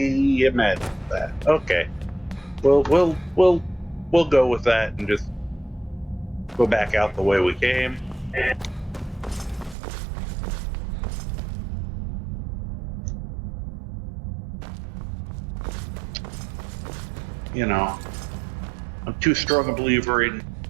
am at that. Okay. We'll go with that and just go back out the way we came. You know, I'm too strong a believer in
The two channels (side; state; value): left; drops out; at 9.8 s